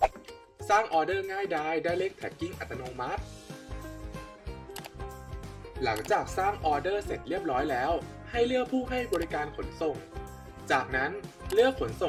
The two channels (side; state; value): both; identical; correlation 1.00